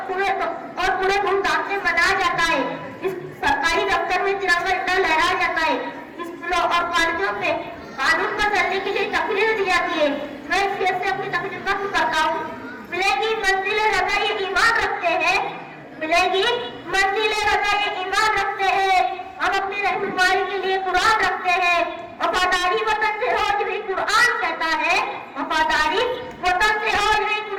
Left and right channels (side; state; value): both; identical; correlation 1.00